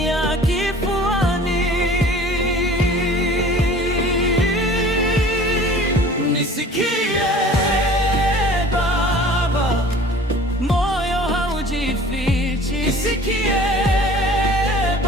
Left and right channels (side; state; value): both; normal; correlation 0.46